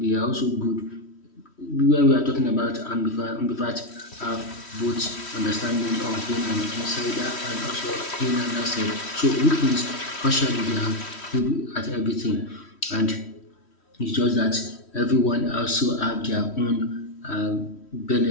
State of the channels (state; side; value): late; right; 3.1 ms